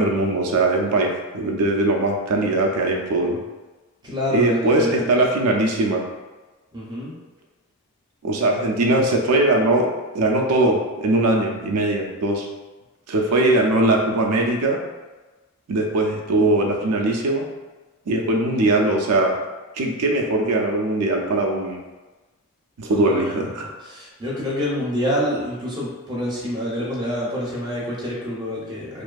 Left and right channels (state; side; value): normal; both; correlation 0.12